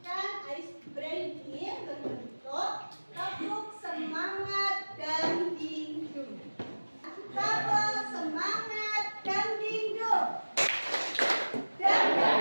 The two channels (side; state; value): both; inverted; correlation -1.00